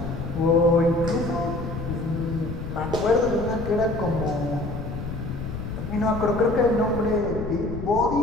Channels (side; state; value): left; noise; rumble, 7 dB below the sound